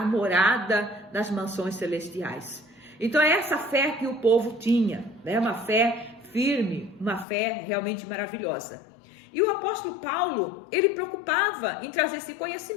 nas mansões celestiais. Então é essa fé que o povo tinha, né, uma fé firme, uma fé realmente maravilhosa. E o apóstolo Paulo, ele preocupava em trazer esse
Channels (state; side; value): drops out; right; at 7.2 s